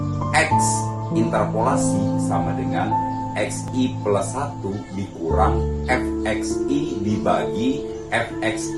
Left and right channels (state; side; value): identical; both; correlation 1.00